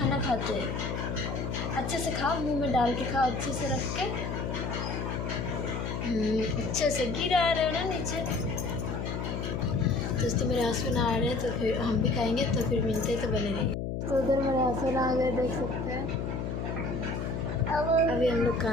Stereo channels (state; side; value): noise; left; hum, 3 dB below the sound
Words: खाते हैं। अच्छे से खाओ, मुंह में डाल के खाओ, अच्छे से रख के, अच्छे से। गिरा रहे हो ना नीचे। दोस्तों मेरे हस्बैंड आ रहे हैं तो फिर हम भी खाएंगे, तो फिर मिलते तो बने रहिए। तो उधर मेरे हस्बैंड आ गए, देख सकते हैं। अभी हम लोग